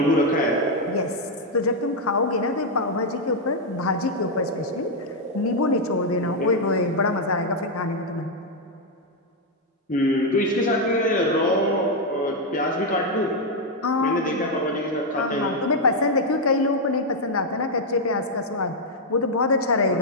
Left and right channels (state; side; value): normal; both; correlation 0.00